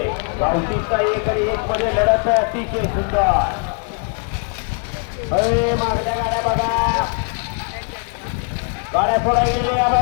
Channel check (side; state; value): right; quieter; 38.0 dB